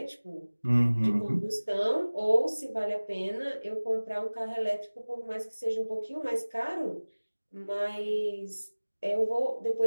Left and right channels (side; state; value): both; inverted; correlation -1.00